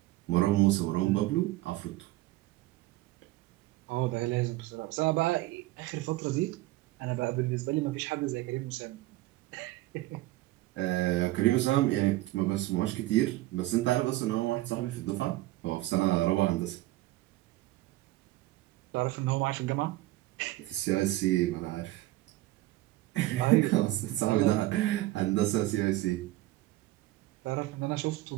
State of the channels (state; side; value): quieter; left; 17.5 dB